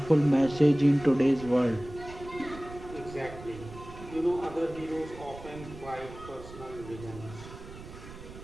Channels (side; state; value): right; noise; rumble, 15 dB below the sound